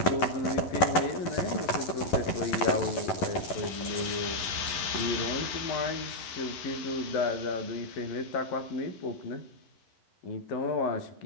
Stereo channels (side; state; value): right; late; 11 ms